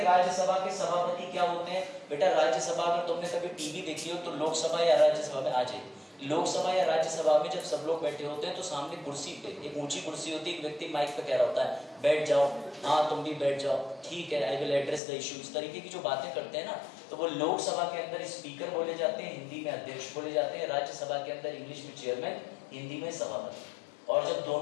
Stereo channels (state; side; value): drops out; right; at 15.0 s